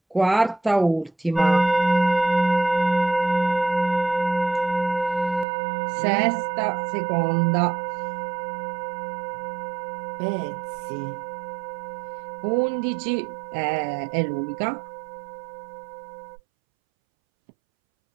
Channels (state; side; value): drops out; left; at 5.5 s